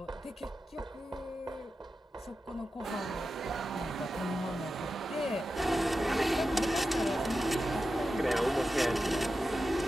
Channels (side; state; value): both; normal; correlation 0.91